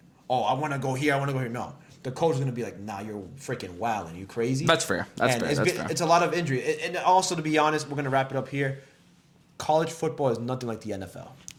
want to go here, I want to go here. No, the coach is gonna be like, nah, you're freaking wilding. You crazy? That's fair. It's a lot of injury. And also, to be honest, we're gonna wrap it up here. College football is nothing like the NFL.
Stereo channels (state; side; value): identical; both; correlation 1.00